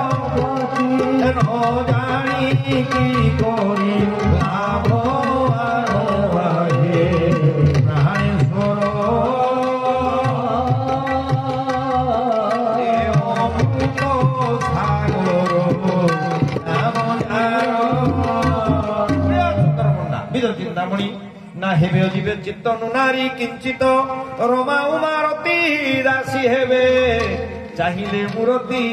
न जानी की कोरी लाभ आरोहे प्राणेश्वर चिंतामणि ना हेबे जीवे चित्त नारी किंचित रमा उमारती दासी हेबे चाहिए मुरती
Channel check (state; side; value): identical; both; correlation 1.00